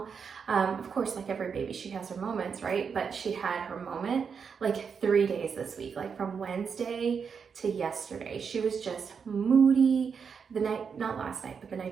Of course, like every baby, she has her moments, right? But she had her moment like 3 days this week, like from Wednesday to yesterday. She was just moody. The night, not last night, but the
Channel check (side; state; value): left; quieter; 6.2 dB